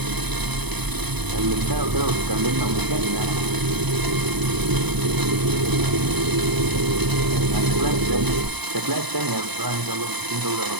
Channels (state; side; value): late; left; 0.99 ms